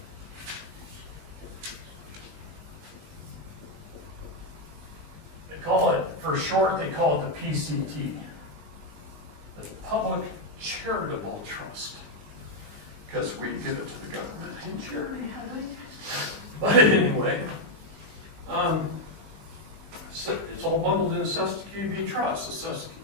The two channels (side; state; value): left; late; 20 ms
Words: They call it, for short, they call it the PCT, the Public Charitable Trust, because we give it to the government in charity, I think. But anyway, so it's all bundled in the Cesta QB Trust. The